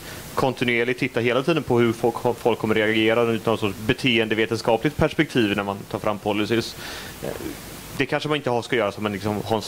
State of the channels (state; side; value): identical; both; correlation 1.00